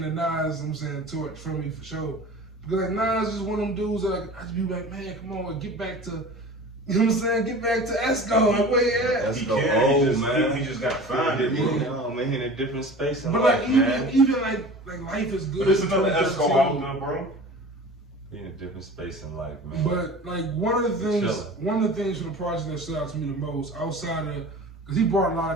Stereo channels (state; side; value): normal; both; correlation 0.39